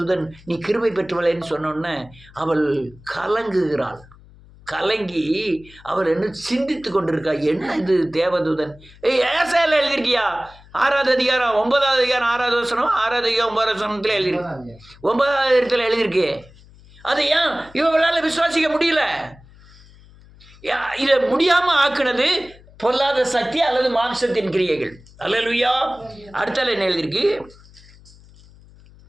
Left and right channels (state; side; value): noise; left; hum, 24 dB below the sound